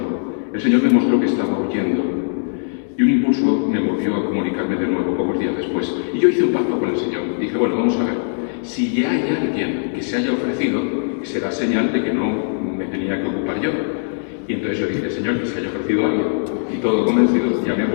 El Señor me mostró que estaba huyendo y un impulso me movió a comunicarme de nuevo pocos días después. Y yo hice un pacto con el Señor. Dije, bueno, vamos a ver, si ya hay alguien que se haya ofrecido, será señal de que no me tenía que ocupar yo. Y entonces yo dije, Señor, que se haya ofrecido alguien. Y todo convencido, llamé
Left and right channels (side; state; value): right; silent; digital silence